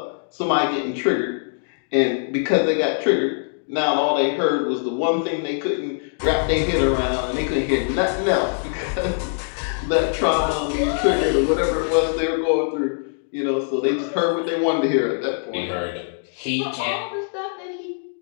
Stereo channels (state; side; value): silent; right; digital silence